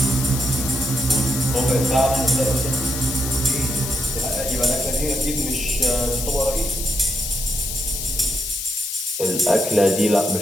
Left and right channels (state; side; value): noise; left; hiss, 5 dB below the sound